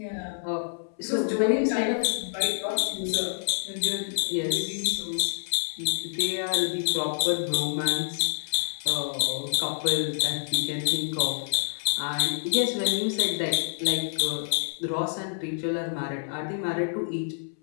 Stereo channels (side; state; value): right; silent; 60 dB below the other